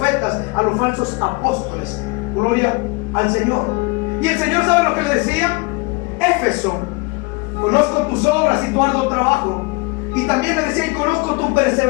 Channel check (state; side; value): quieter; right; 27.3 dB